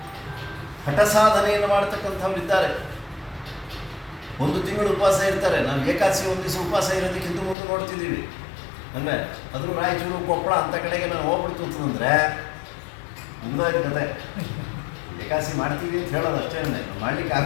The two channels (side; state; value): right; drops out; at 7.6 s